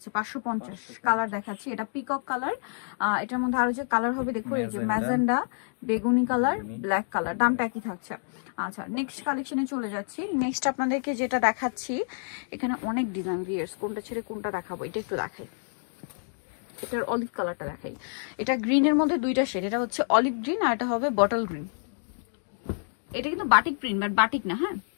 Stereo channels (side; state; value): right; silent; digital silence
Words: 550। কালার দেখাচ্ছি, এটা পিকক কালার। এটার মধ্যে আরো যে কালার হবে দেখো, এই যে ম্যাজেন্ডা, বেগুনি কালার, ব্ল্যাক কালার। দামটা একই থাকছে। আচ্ছা, নেক্সট কালেকশনে চলে যাচ্ছি। নেক্সট আপনাদেরকে যেটা দেখাচ্ছি, এখানে অনেক ডিজাইন, ভিউয়ার্স কোনটা ছেড়ে কোনটা দেখাবো, এটা একটু দেখাই। এটার অলিভ কালারটা দেখাই। এটা গ্রিনের মধ্যে দুইটা শেড, এটা হচ্ছে অলিভ গ্রিন আর এটা হবে বটল গ্রিন। এটা কিন্তু বাটিক প্রিন্ট, বাট বাটিক না। হ্যাঁ,